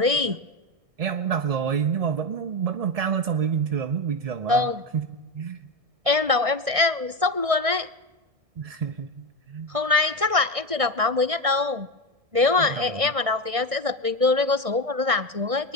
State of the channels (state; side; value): late; left; 1.6 ms